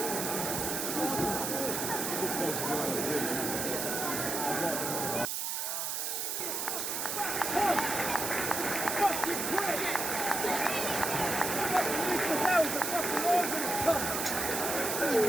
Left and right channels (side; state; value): right; noise; hiss, 1 dB below the sound